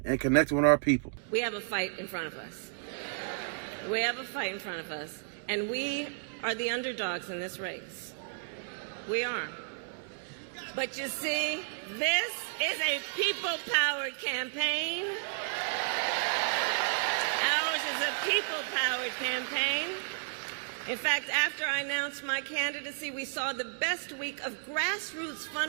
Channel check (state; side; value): silent; left; digital silence